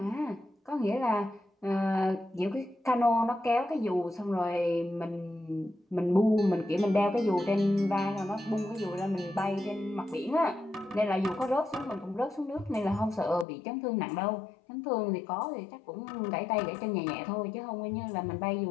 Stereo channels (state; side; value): drops out; right; at 13.5 s